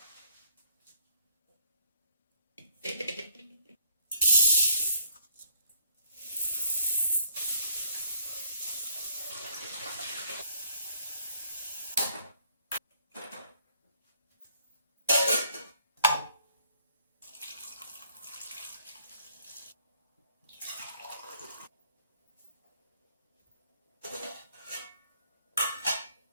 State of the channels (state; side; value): inverted; both; correlation -0.65